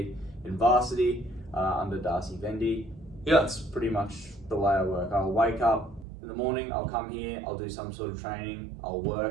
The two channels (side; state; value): left; drops out; at 6.1 s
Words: in Varsity, under Darcy Vendy. Yeah. That's pretty much the way I work. I'll wake up in the morning, I'll come here, I'll do some sort of training, I'll